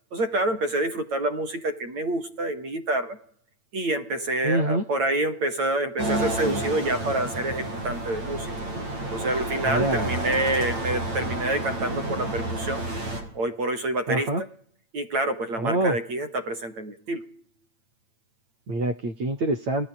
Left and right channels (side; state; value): left; late; 8.9 ms